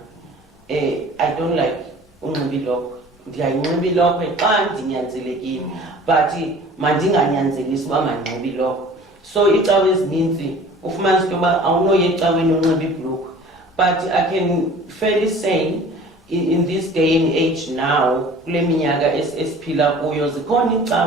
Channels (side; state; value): both; normal; correlation 0.46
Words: I don't like unxiba ilokwe. Ndiyayinxiba ilokwe xa ndinyanzelekile, but mandinganyanzelisi uba mandinxibe ilokwe. So icawe ezininzi ufumanisa into yoba awunoya ecaweni unxiba ibhulukhwe. But I can fairly say in this day and age now, kule minyaka esiphila kuyo, zikhona